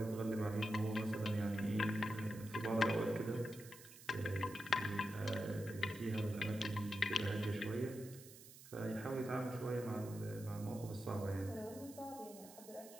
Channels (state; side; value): noise; right; hiss, 17 dB below the sound